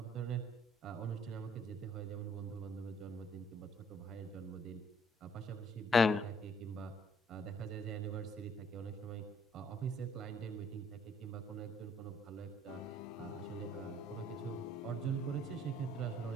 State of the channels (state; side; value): normal; both; correlation 0.63